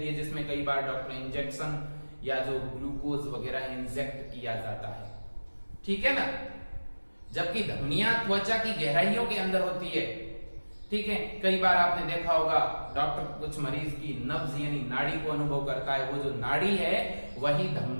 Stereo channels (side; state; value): both; inverted; correlation -1.00